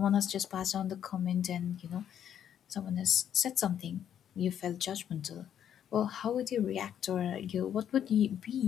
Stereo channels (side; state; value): right; quieter; 9.6 dB